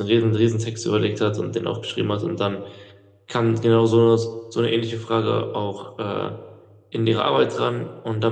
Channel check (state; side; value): identical; both; correlation 1.00